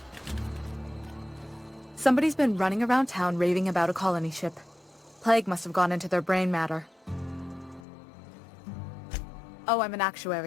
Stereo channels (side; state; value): right; drops out; at 7.9 s